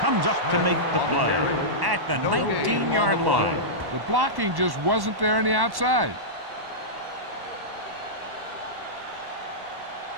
up to make the play at the 19-yard line. The blocking just wasn't there on the outside.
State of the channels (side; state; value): left; late; 1.1 ms